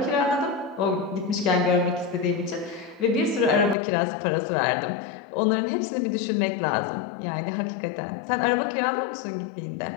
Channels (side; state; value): right; drops out; at 3.8 s